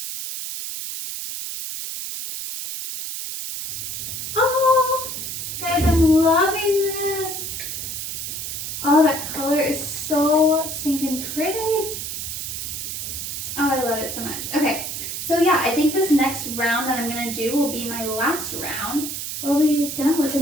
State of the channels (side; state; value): right; noise; hiss, 5 dB below the sound